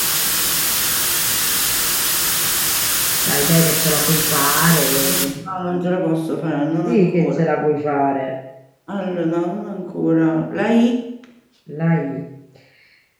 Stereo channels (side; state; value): both; identical; correlation 1.00